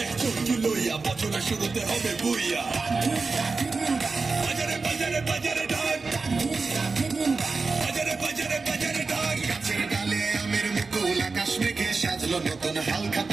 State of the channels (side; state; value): left; quieter; 4.2 dB